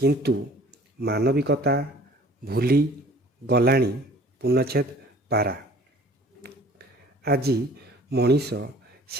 ମାନବିକତା ଭୁଲି ଗଲାଣି। ପୂର୍ଣ୍ଣଚ୍ଛେଦ। ପାରା। ଆଜି ମଣିଷ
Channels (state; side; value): normal; both; correlation 0.50